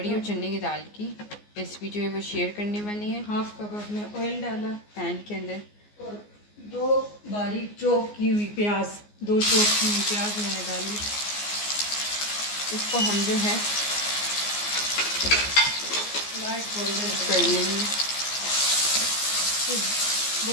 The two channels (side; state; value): right; late; 14 ms